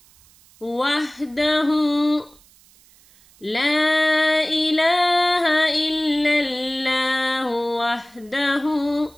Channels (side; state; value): right; noise; hiss, 28 dB below the sound